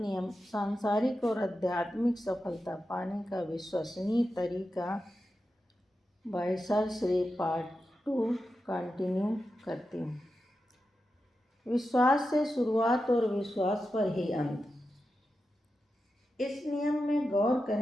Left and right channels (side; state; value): both; normal; correlation 0.90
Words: सांसारिक और आध्यात्मिक सफलता पाने का विश्वसनीय तरीका by sir Shri part 2 continue करती हूँ। विश्वास से शुरुआत और विश्वास पर ही अंत। इस नियम में गौर